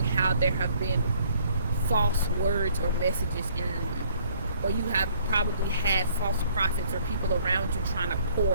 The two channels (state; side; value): inverted; both; correlation -0.61